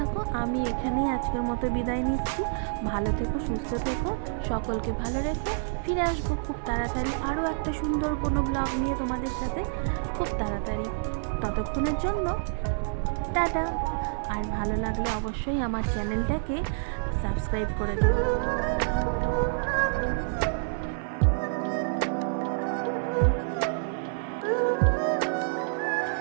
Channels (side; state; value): left; silent; digital silence